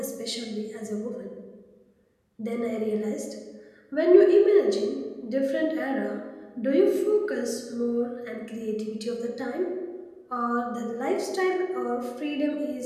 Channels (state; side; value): identical; both; correlation 1.00